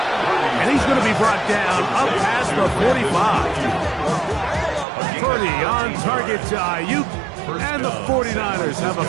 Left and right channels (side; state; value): left; drops out; at 4.9 s